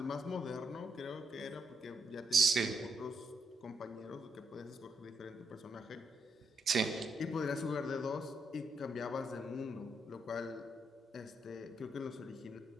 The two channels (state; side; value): normal; both; correlation 0.79